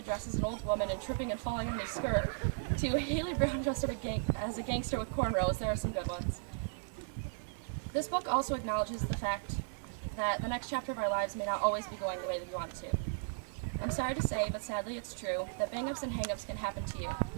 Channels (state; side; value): silent; left; digital silence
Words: dressed as an old woman and tripping and falling on his skirt, to Haley Brown dressed up as a gangster with cornrows, there are some good ones. This book also acknowledges the fact that the next chapter of our lives may not always be going the way that we want it to. I'm sorry to say, but sadly it's true, that bang-ups and hang-ups can happen to you.